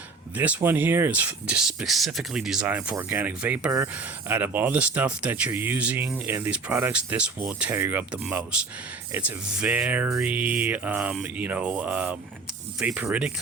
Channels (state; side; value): quieter; left; 4.1 dB